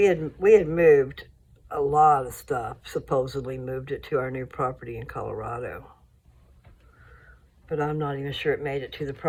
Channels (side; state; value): both; identical; correlation 1.00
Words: had moved a lot of stuff, supposedly moved it to our new property in Colorado. But I'm not even sure it made it to the